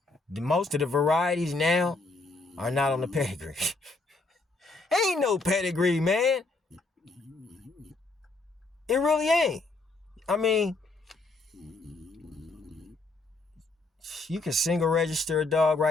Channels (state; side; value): quieter; right; 3.3 dB